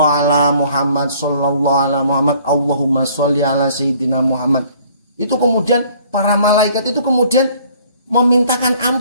ala Muhammad, sallallahu ala Muhammad, Allahumma sholli ala sayyidina Muhammad. Itu kemudian para malaikat itu kemudian memintakan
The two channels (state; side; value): inverted; both; correlation -0.57